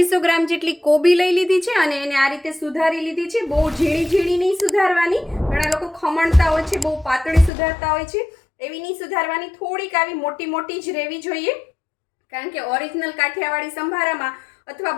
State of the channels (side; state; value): right; drops out; at 7.5 s